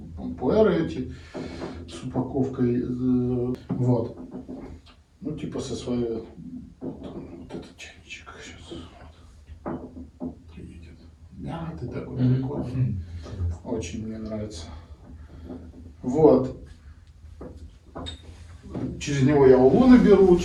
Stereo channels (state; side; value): identical; both; correlation 1.00